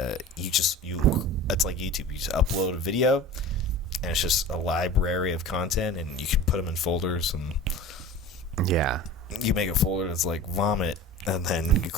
like YouTube. You just upload a video, and it's just a library of content, and you can put them in folders, and you make a folder that's like vomit, and then you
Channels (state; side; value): normal; both; correlation 0.36